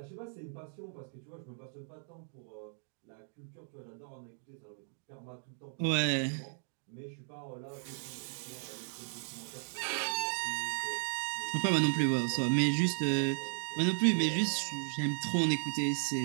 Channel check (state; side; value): silent; left; digital silence